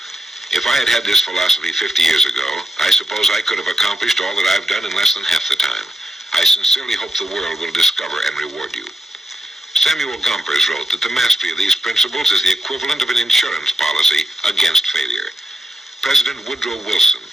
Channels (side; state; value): both; normal; correlation 0.88